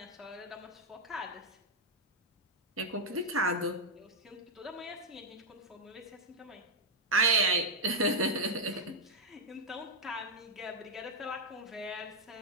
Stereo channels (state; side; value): normal; both; correlation -0.02